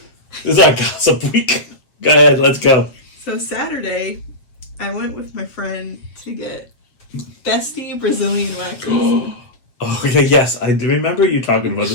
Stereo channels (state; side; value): late; right; 7.9 ms